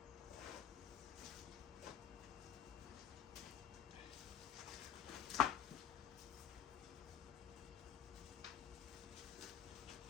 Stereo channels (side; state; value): right; quieter; 9.4 dB